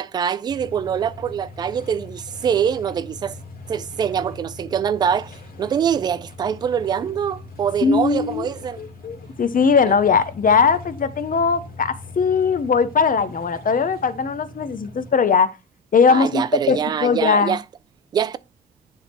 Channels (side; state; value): both; normal; correlation 0.19